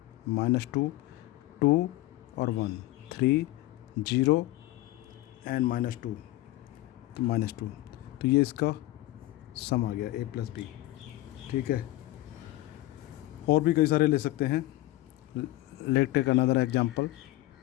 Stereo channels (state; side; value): quieter; right; 17.2 dB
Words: -2 2 और 1 3 0 एंड -2 तो -2, तो ये इसका सम आ गया ए प्लस बी। ठीक है, और भी कई सारे ले सकते हैं। Let take another example,